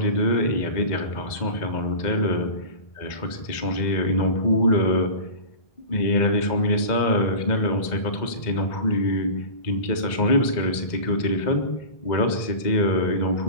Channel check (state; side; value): late; right; 2.0 ms